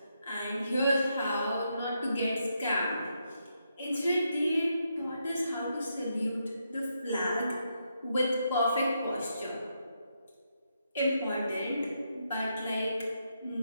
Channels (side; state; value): both; inverted; correlation -0.81